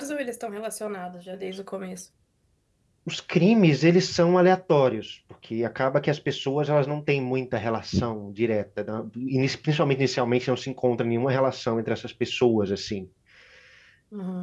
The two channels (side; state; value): both; identical; correlation 1.00